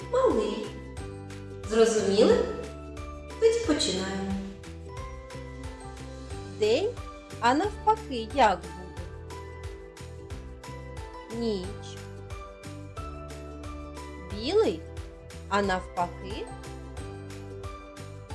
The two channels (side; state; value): both; identical; correlation 1.00